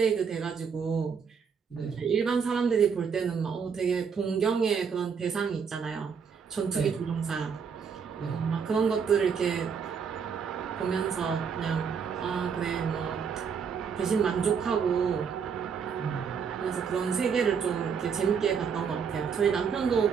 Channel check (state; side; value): quieter; left; 6.4 dB